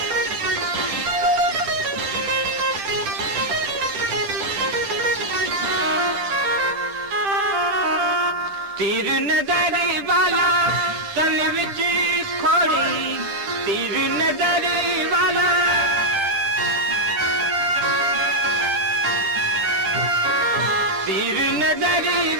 तीर नजर वाला तन विच खोड़ी, तीर नजर वाला तीर नजर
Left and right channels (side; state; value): left; late; 10 ms